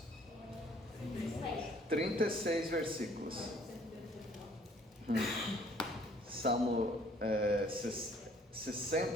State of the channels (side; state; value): both; normal; correlation 0.59